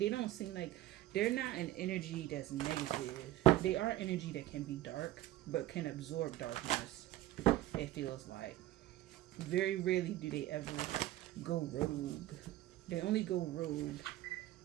don't seem like, they're not an energy that's negative. They are energy that can be dark but can absorb darkness, it feels like. Very rarely do they ever go rogue. They only go rogue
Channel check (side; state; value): left; quieter; 15.5 dB